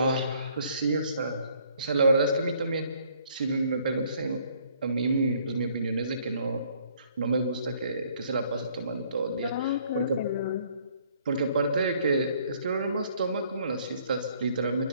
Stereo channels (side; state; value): both; inverted; correlation -0.63